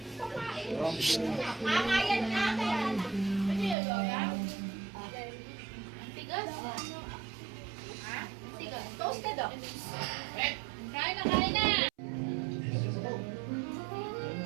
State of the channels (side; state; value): left; drops out; at 3.8 s